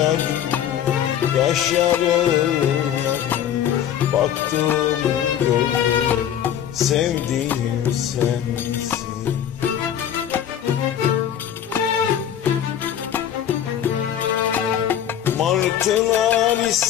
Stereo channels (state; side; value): quieter; right; 10.0 dB